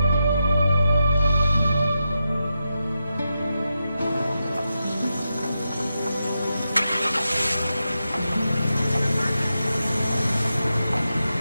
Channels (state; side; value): inverted; both; correlation -0.88